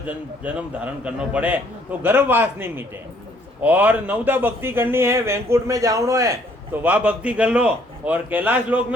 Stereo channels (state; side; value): normal; both; correlation 0.64